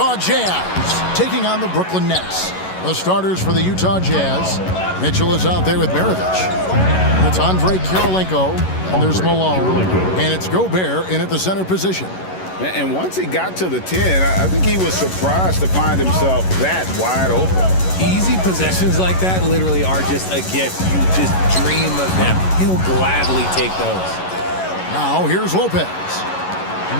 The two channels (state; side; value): late; right; 11 ms